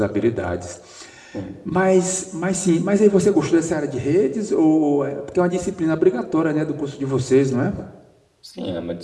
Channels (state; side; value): identical; both; correlation 1.00